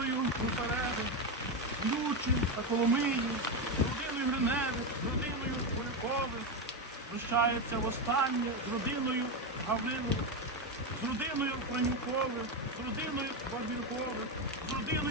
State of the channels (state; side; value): normal; both; correlation 0.11